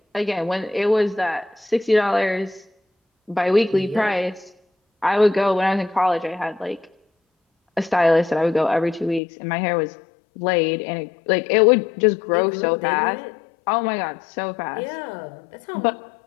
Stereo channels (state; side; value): drops out; right; at 9.2 s